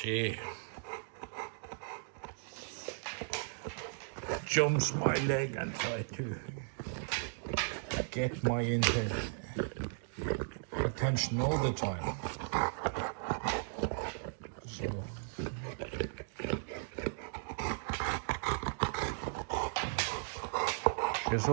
jumps my leg and tries to get my attention all the time. So she's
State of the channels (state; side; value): silent; left; digital silence